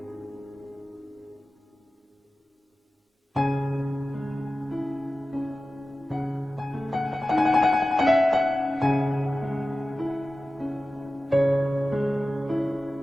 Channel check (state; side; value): normal; both; correlation 0.95